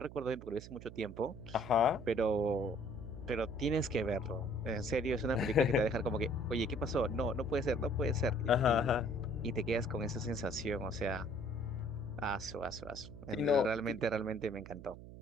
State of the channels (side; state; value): right; noise; hum, 14 dB below the sound